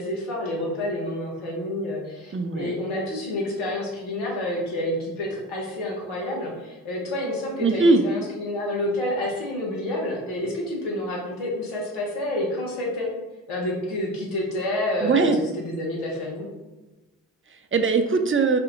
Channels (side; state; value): both; normal; correlation 0.30